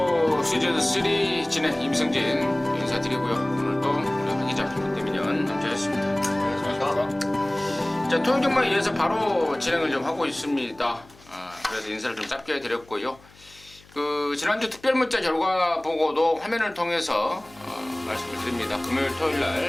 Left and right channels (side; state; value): left; noise; hum, 26 dB below the sound